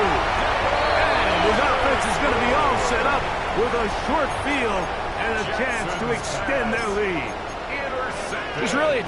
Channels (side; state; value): both; identical; correlation 1.00